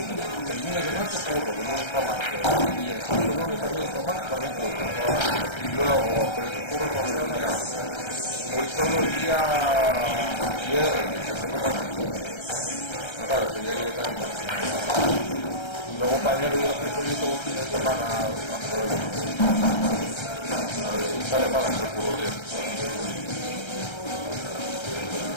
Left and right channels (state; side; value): late; right; 1.3 ms